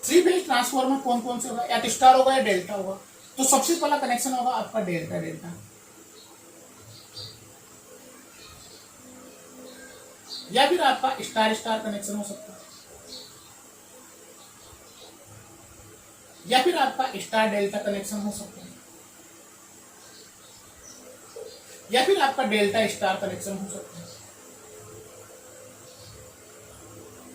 3 फेज ट्रांसफॉर्मर कौन कौन से होगा, या तो स्टार होगा या डेल्टा होगा। तो सबसे पहला कनेक्शन होगा आपका डेल्टा डेल्टा, या फिर आपका स्टार स्टार कनेक्शन हो सकता है, या फिर आपका स्टार डेल्टा कनेक्शन हो सकता है, या फिर आपका डेल्टा स्टार कनेक्शन हो सकता है।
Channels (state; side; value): identical; both; correlation 1.00